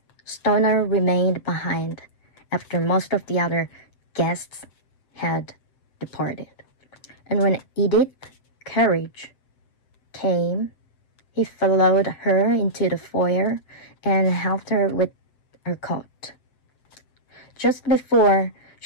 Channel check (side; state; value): right; late; 7.6 ms